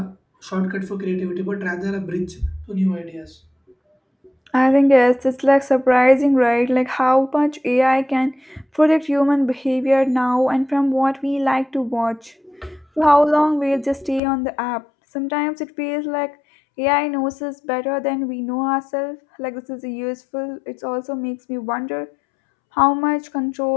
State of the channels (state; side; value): drops out; right; at 14.2 s